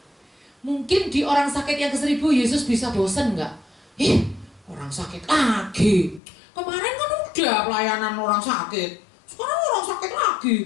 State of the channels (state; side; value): drops out; right; at 6.2 s